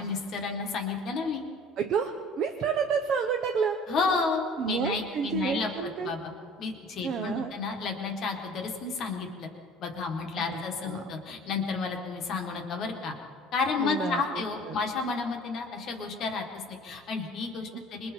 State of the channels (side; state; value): both; normal; correlation 0.47